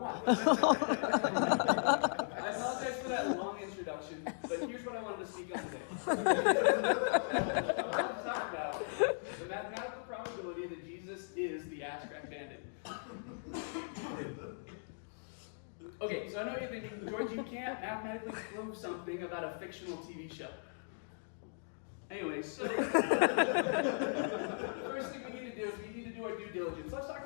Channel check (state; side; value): silent; right; digital silence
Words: I apologize for that long introduction, but here's what I wanted to speak on today. I want to talk about the mathematical probability that Jesus is the Ass Crack Bandit. Okay, so I know you're thinking, George, you can't mathematically prove something about a fictional TV show. Anyway, so the first thing we need to do is we need to do our due diligence. Let's talk